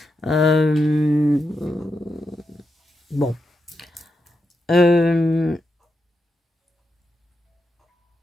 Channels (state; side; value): normal; both; correlation 0.86